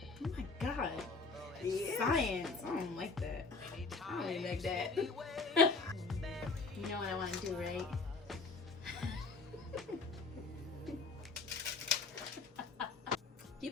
Oh my god. Yeah. Science. I don't like that. I don't really like that. You know what I want to do, right? Do you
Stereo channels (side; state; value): right; quieter; 4.1 dB